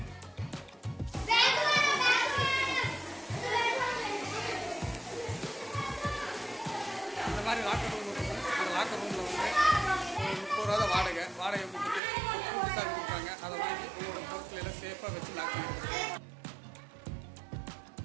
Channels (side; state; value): left; drops out; at 12.0 s